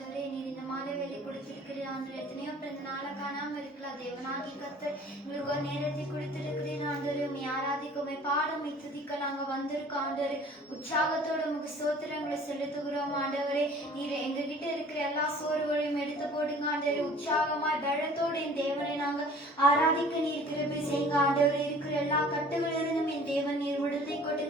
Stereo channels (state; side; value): normal; both; correlation 0.49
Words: நீர் இந்த மாலை வேலை கொடுத்திருக்கிறீர் ஆண்டவரே. எத்தனையோ பிறந்த நாளை காணாமல் இருக்கலாம். தேவனாகி கர்த்தர் எங்களுக்கு ஒரு நேரத்தை கொடுத்திருக்கிறீர் ஆண்டவரே. உண்மை ஆராதிக்குமே பாடம் துதிக்க நாங்க வந்திருக்கோம் ஆண்டவரே. உற்சாகத்தோட உங்களுக்கு ஸ்தோத்திரங்களை செலுத்துகிறோம் ஆண்டவரே. நீர் எங்ககிட்ட இருக்கிற எல்லா சோர்வுகளையும் எடுத்து போடுங்க ஆண்டவரே. உற்சாகமாய் பலத்தோடு என் தேவனை நாங்க ஆராதிக்க நீர் கிருபை செய்யுங்க ஆண்டவரே. இருக்கிற எல்லா கட்டுகளிலிருந்தும் என் தேவன் நீர் விடுதலை